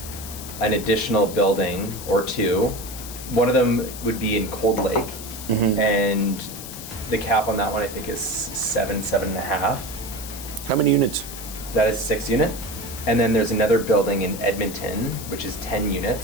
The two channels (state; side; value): noise; left; hiss, 11 dB below the sound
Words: an additional building or 2. One of them would be in Cold Lake. And the cap on that one I think is 7.5. How many units? That is 6 unit. And then there's another building in Edmonton, which is 10